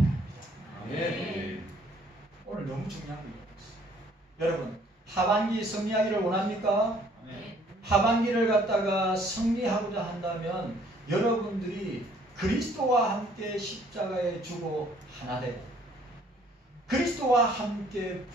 네. 오늘 너무 중요한 거 있어요. 여러분, 하반기 승리하기를 원합니까? 네. 하반기를 갖다가 승리하고자 한다면 여러분들이 그리스도와 함께 십자가에 죽어 하나 되고 그리스도와 함께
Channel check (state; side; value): normal; both; correlation 0.61